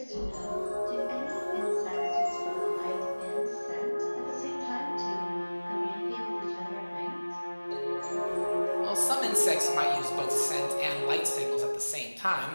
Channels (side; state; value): both; inverted; correlation -1.00